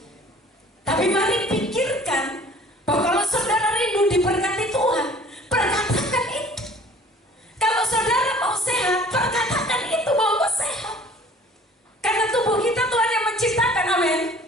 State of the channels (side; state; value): both; normal; correlation 0.50